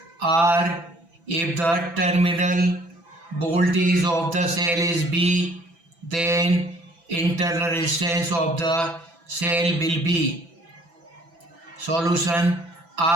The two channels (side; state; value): left; late; 6.0 ms